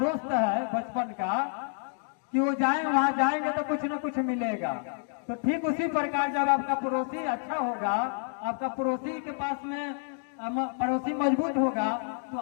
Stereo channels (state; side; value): silent; right; 57 dB below the other